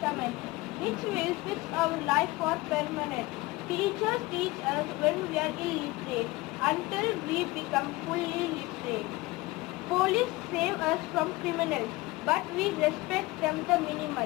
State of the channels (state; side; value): quieter; right; 21.1 dB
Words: which will fix our life for permanent. Teachers teach us when we are illiterate until we become fully literate. Police save us from criminals, but we respect them the